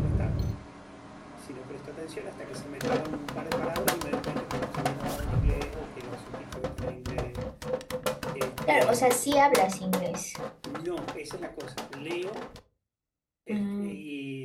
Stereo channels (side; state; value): both; identical; correlation 1.00